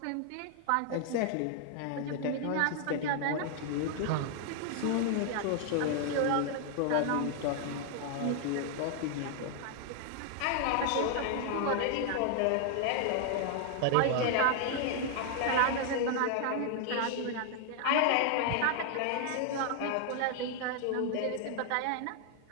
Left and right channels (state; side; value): different; both; correlation 0.00